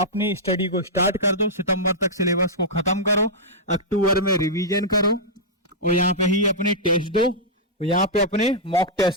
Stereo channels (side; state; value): both; normal; correlation -0.10